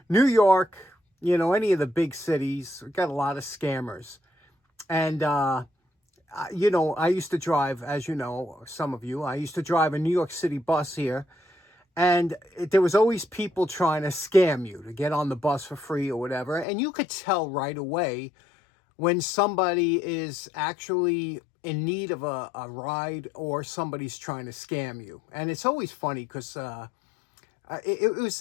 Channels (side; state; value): right; drops out; at 16.7 s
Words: New York, any of the big cities, we've got a lot of scammers. And, I used to drive, as you know, some of you, I used to drive a New York City bus here. And there was always people trying to scam you to get on the bus for free or whatever. And you could tell right away when somebody is actually in need of a ride or somebody's trying to scam you. And it's always funny because it